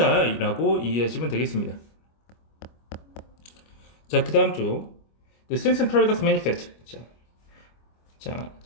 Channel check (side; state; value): right; late; 25 ms